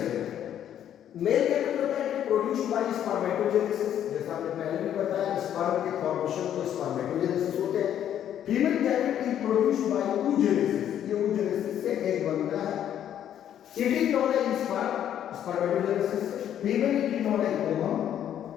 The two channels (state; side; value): quieter; right; 10.3 dB